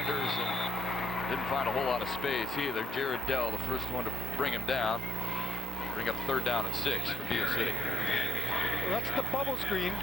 and didn't find a whole lot of space either. Jared Dell, the first one to bring him down. Bring up 3rd down and 6 for Beal City. Well, that's the bubble screen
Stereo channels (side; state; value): both; normal; correlation 0.63